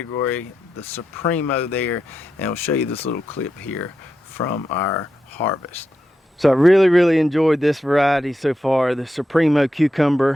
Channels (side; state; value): both; normal; correlation 0.86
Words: the Supremo there. And I'll show you this little clip here from our harvest. So I really enjoyed this variety so far. The Supremo